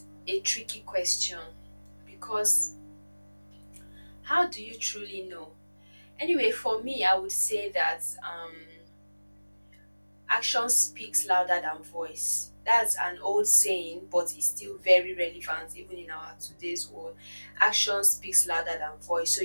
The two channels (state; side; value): inverted; both; correlation -1.00